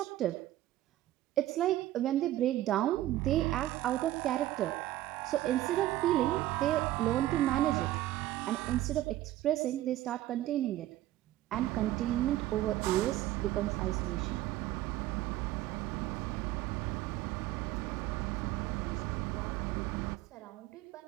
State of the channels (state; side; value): quieter; left; 14.8 dB